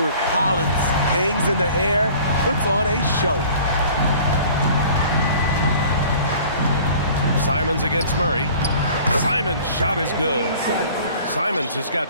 Collins hangs in the air, puts on a show. Simons against Murray. Simons' shot is good. Simons has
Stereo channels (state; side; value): inverted; both; correlation -0.48